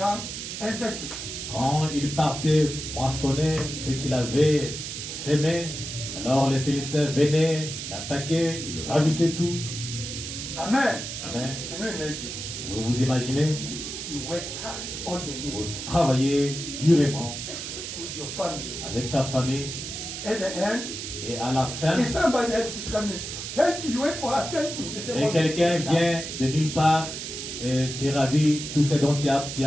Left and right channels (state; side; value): noise; right; hiss, 7 dB below the sound